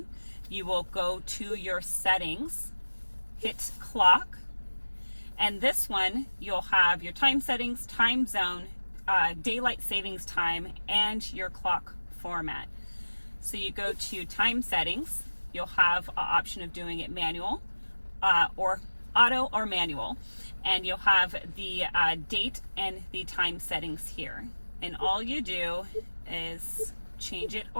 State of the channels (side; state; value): both; inverted; correlation -1.00